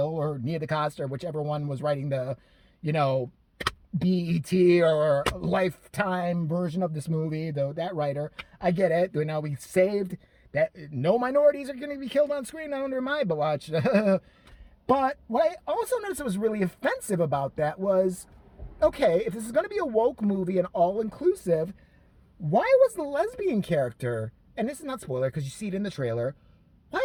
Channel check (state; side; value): identical; both; correlation 1.00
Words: or Nia DaCosta or whichever one was writing the, you know, BET or Lifetime version of this movie, though that writer, I get it. You know, we saved that no minorities are going to be killed on screen under my watch. But what I also noticed that was really offensive about that was, okay, if this is going to be a woke movie and all-inclusive, why was the lesbian character, and this is not spoiler because you see it in the trailer,